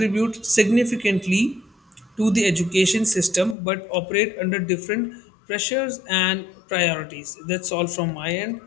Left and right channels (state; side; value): drops out; right; at 3.6 s